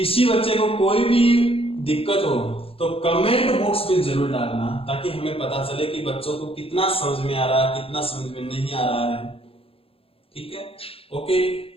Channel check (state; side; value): late; right; 0.27 ms